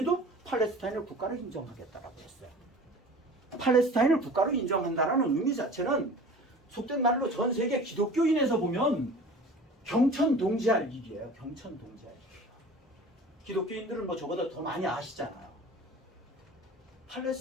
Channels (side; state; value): both; normal; correlation 0.41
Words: 팔레스타인을 국가로 인정하겠다라고 했어요. 팔레스타인을 국가로 인정한다는 의미 자체는 속된 말로 전 세계 기독교인에서 보면 경천동지할 일이에요. 경천동지할 일이에요. 기독교인들은 뭐 저보다 더 많이 아시잖아요.